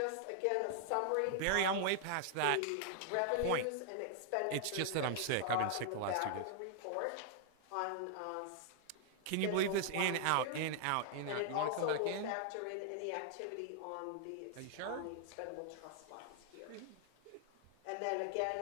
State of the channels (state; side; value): different; both; correlation 0.00